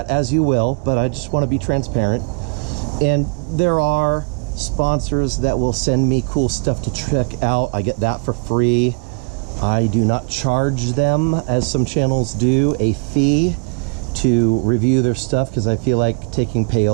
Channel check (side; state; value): left; quieter; 36.1 dB